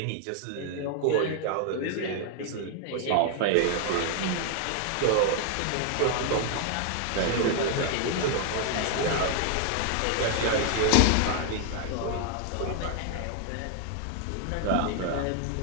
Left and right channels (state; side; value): different; both; correlation 0.00